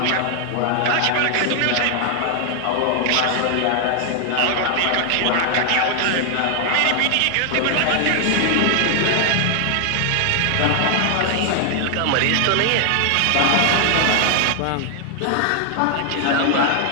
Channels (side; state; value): both; different; correlation 0.00